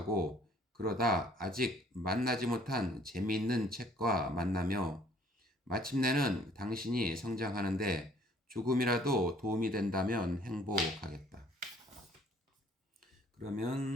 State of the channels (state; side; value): normal; both; correlation 0.59